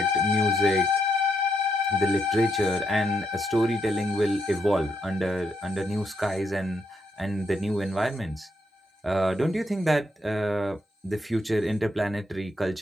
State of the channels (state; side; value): normal; both; correlation 0.78